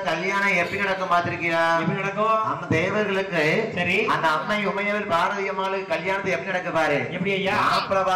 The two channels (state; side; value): identical; both; correlation 1.00